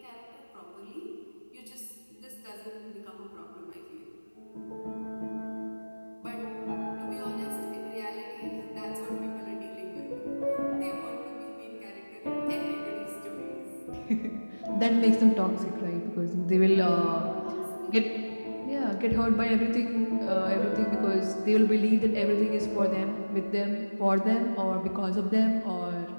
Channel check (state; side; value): inverted; both; correlation -1.00